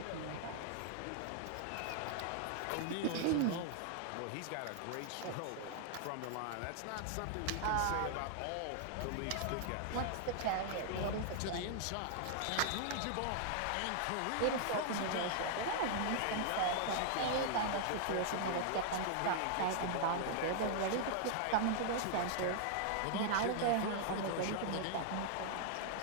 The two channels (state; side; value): different; both; correlation -0.01